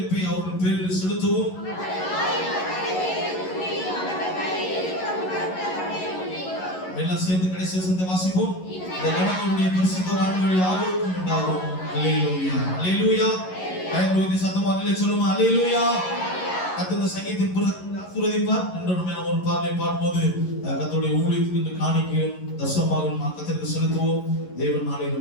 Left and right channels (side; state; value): right; late; 11 ms